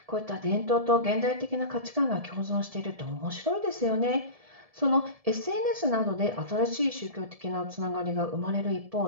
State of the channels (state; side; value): late; left; 1.7 ms